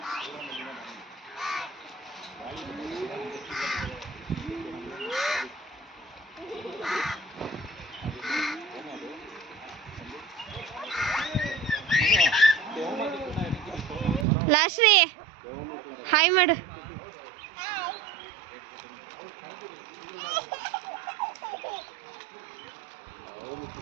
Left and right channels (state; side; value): drops out; left; at 14.2 s